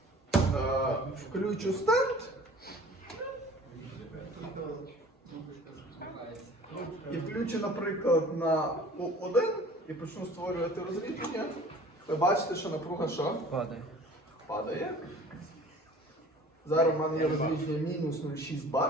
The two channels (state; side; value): normal; both; correlation 0.47